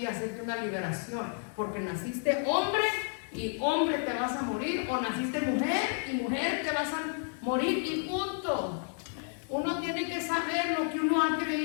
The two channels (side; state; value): right; silent; 57 dB below the other